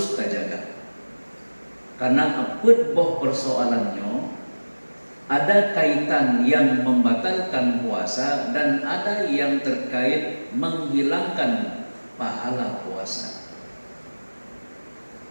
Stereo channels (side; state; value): both; inverted; correlation -1.00